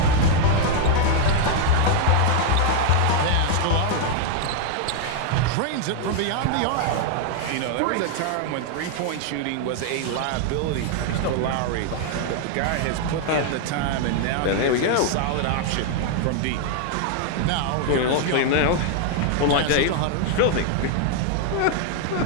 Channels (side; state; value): both; different; correlation 0.00